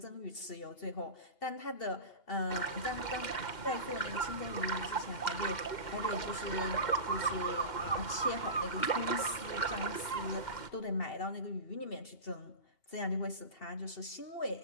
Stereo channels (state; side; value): late; right; 2.8 ms